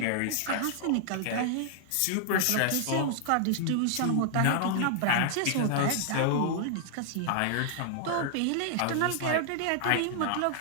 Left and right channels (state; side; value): different; both; correlation 0.00